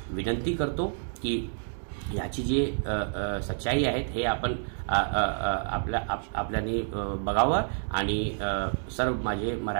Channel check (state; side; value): silent; left; digital silence